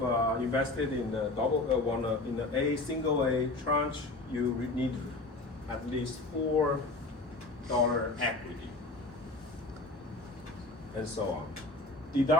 of invested in the in the single A tranche, you need at least $4 equity, and so on.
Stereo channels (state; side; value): quieter; right; 3.0 dB